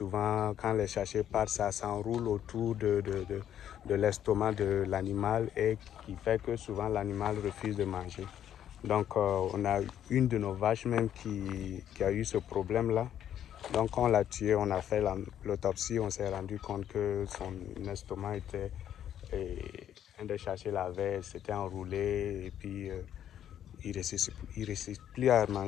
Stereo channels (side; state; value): right; quieter; 10.3 dB